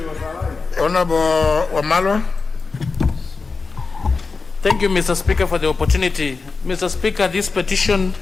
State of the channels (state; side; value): quieter; right; 4.4 dB